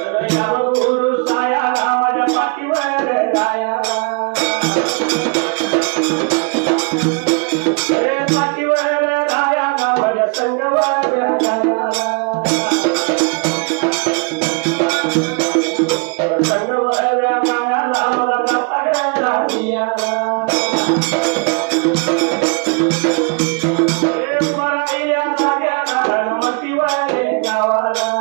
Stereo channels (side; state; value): left; quieter; 35.4 dB